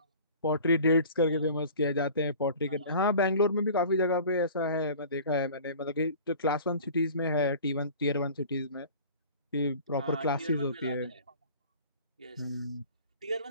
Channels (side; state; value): both; inverted; correlation -0.43